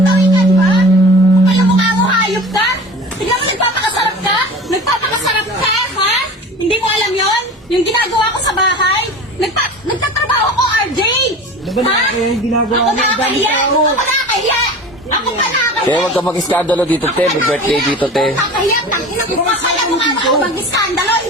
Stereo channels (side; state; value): both; normal; correlation 0.37